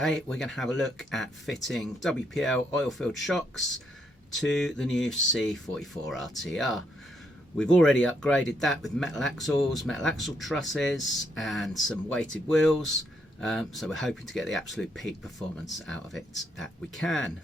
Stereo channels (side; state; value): both; normal; correlation 0.76